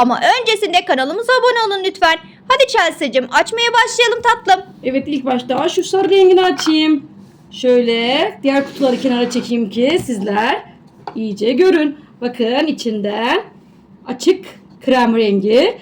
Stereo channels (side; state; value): both; identical; correlation 1.00